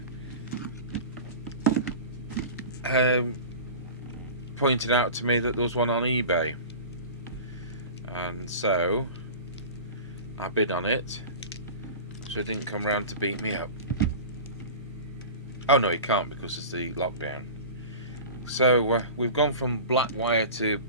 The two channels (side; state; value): both; inverted; correlation -0.35